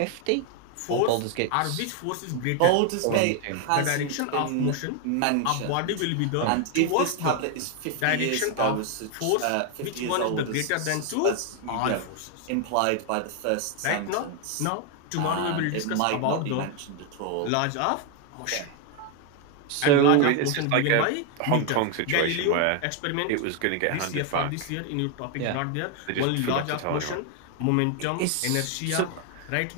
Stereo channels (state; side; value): different; both; correlation 0.01